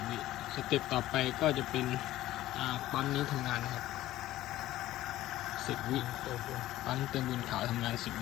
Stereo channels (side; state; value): right; quieter; 15.1 dB